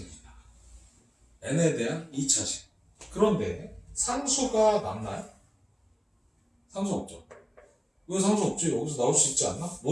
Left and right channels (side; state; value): both; identical; correlation 1.00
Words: n에 대한 2차식. 그런데 상수가 남나요? 상수 없죠. 왜 상수 없지? 여기서 나올 수 있지 않나?